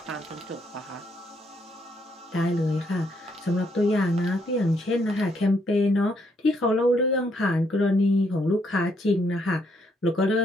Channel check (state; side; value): normal; both; correlation 0.73